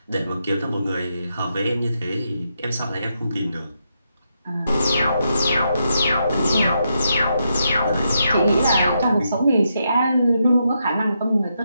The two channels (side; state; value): both; inverted; correlation -0.82